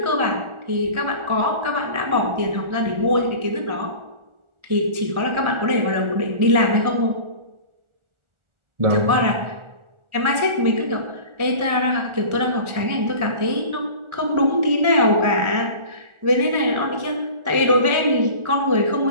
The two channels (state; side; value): late; left; 1.4 ms